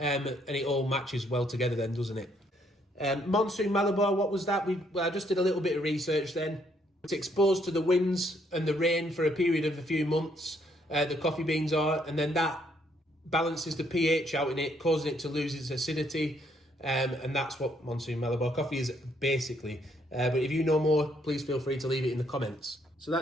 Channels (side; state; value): both; normal; correlation 0.70